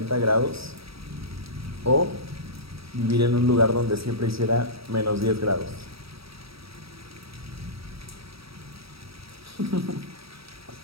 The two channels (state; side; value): late; left; 0.76 ms